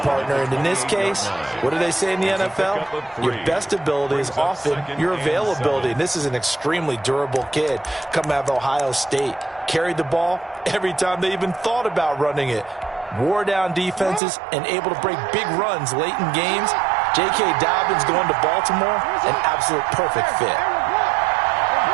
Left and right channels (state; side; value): drops out; left; at 14.2 s